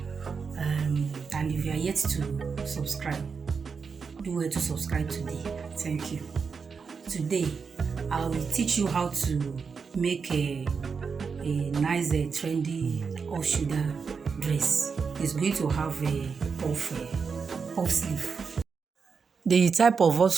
and if you are yet to subscribe, do well to subscribe today. Thank you. Today I will teach you how to make a nice trendy off shoulder dress. It's going to have a puff sleeve. The type of off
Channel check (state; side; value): quieter; left; 5.5 dB